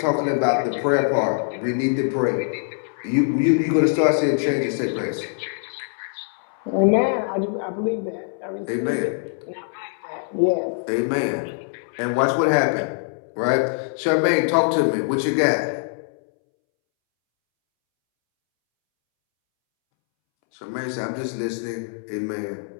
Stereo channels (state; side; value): silent; right; 63 dB below the other